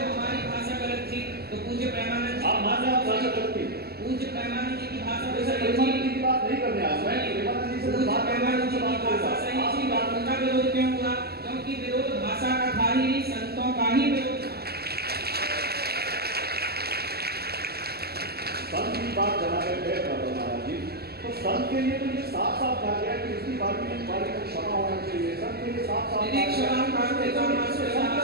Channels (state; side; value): late; left; 0.46 ms